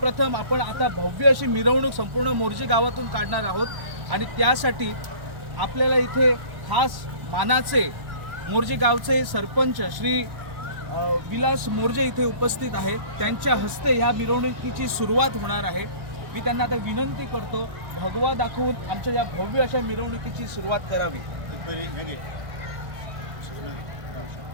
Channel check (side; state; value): left; late; 1.0 ms